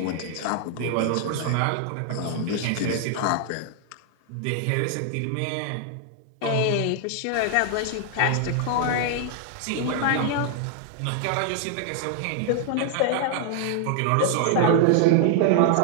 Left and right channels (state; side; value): different; both; correlation 0.00